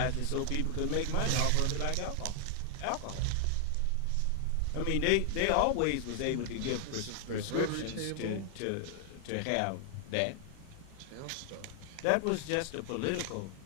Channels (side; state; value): both; different; correlation 0.00